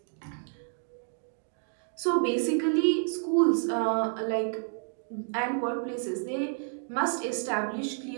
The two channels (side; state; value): left; silent; 58 dB below the other